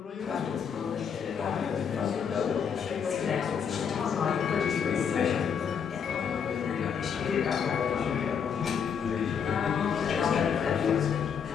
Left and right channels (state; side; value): quieter; right; 7.1 dB